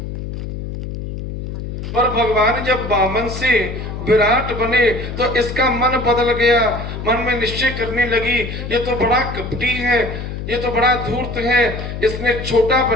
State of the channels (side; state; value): left; noise; hum, 7 dB below the sound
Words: पर भगवान जब वामन से विराट बने तो इसका मन बदल गया, मन में निश्चय करने लगी, ये तो बड़ा कपटी है, ये तो बड़ा धूर्त है, इसने छोटा